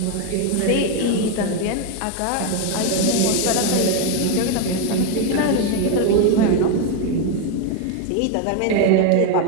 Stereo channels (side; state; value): both; different; correlation 0.01